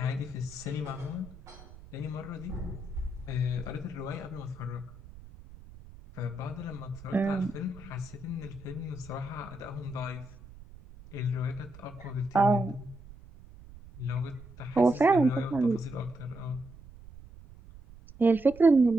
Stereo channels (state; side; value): noise; right; rumble, 18 dB below the sound